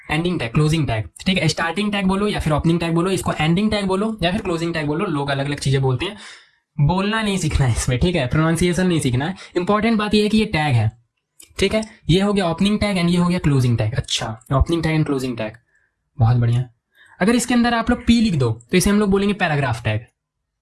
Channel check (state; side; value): identical; both; correlation 1.00